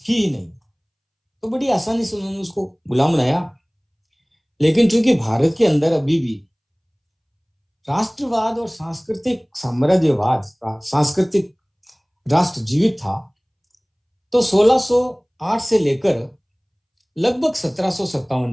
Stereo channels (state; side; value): identical; both; correlation 1.00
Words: थी ही नहीं, तो बड़ी आसानी से उन्होंने उसको गुलाम बनाया। लेकिन चूंकि भारत के अंदर अभी भी राष्ट्रवाद और सांस्कृतिक साम्राज्यवाद, सांस्कृतिक राष्ट्र जीवित था, तो 1608 से लेकर लगभग